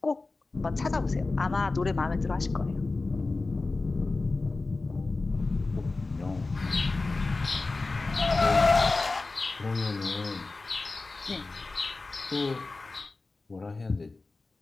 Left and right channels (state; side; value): quieter; right; 3.5 dB